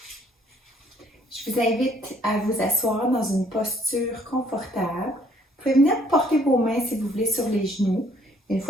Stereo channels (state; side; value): normal; both; correlation 0.63